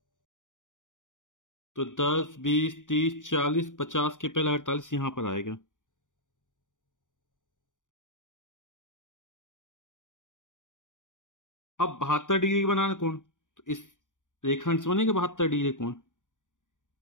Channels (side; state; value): right; late; 0.87 ms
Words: तो 10, 20, 30, 40, 50 के पहले 48 यहां पर आएगा। अब 72 डिग्री का बनाना कोण, तो इस रेखाखंड से बनेगा 72 डिग्री कोण।